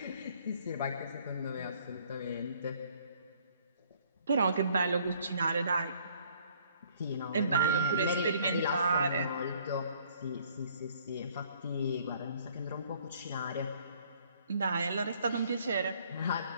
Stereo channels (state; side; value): inverted; both; correlation -0.61